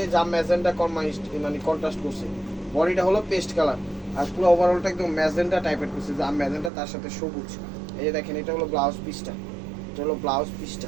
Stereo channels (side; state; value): left; drops out; at 6.7 s